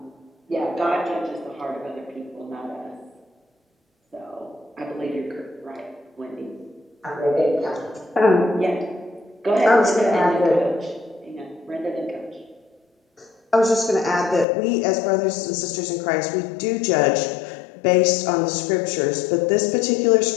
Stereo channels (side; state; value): right; drops out; at 14.5 s